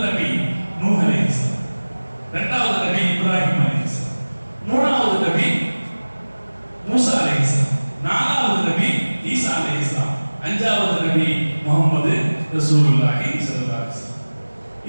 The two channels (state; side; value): inverted; both; correlation -1.00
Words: நபி நூஹ் அலைஹிஸ்ஸலாம், இரண்டாவது நபி இப்ராஹிம் அலைஹிஸ்ஸலாம், மூணாவது நபி மூசா அலைஹிஸ்ஸலாம், நாலாவது நபி ஈசா அலைஹிஸ்ஸலாம், அஞ்சாவது நபி முஹம்மது ரசூலுல்லாஹி ஸல்லல்லாஹு அலைஹி வஸல்லம்.